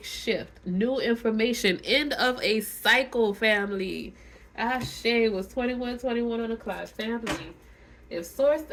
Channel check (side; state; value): both; identical; correlation 1.00